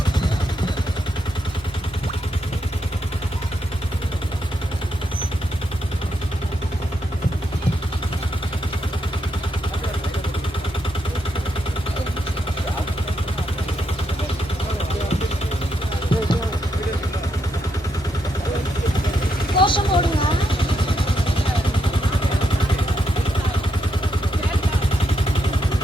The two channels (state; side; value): normal; both; correlation 0.80